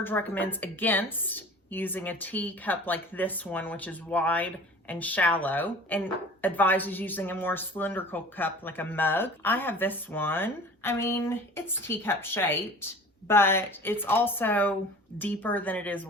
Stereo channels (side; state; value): both; normal; correlation 0.42